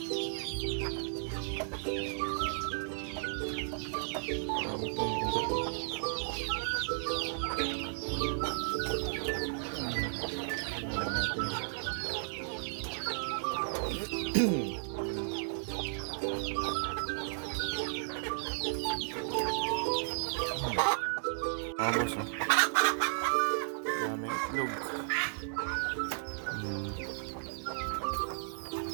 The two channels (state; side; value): silent; left; 55 dB below the other